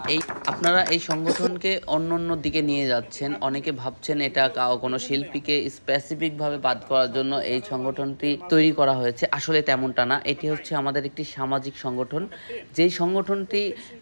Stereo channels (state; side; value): inverted; both; correlation -1.00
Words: আপনারা এই সংগঠনকে অন্য অন্য দিকে নিয়ে যাচ্ছেন, অনেকে ভাবছেন এটা কোনো শিল্পীকে স্পেসিফিকভাবে বাদ করার জন্য এই সংগঠনটি তৈরি করা হয়েছে। আসলে তেমনটা না, এটি হচ্ছে আমাদের একটি সামাজিক সংগঠন। যেই সংগঠনটি